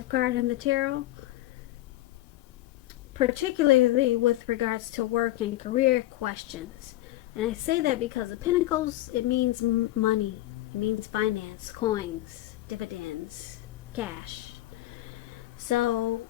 card in the tarot, particularly with regards to work and career questions. And I say that because the Pentacles, it means money. It means finance, coins, dividends, cash. So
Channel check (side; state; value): right; quieter; 16.1 dB